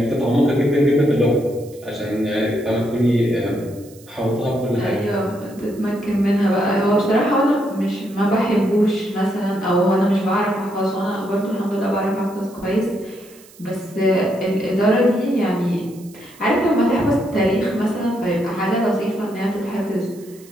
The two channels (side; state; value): right; noise; hiss, 24 dB below the sound